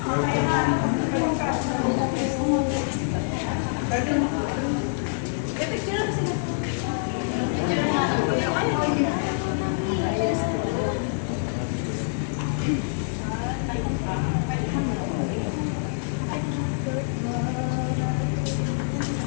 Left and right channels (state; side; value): silent; right; digital silence